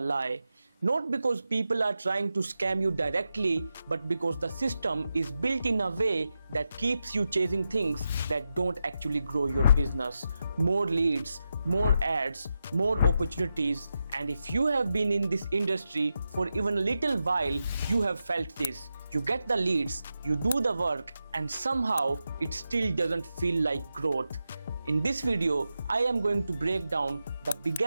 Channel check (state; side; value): inverted; both; correlation -0.89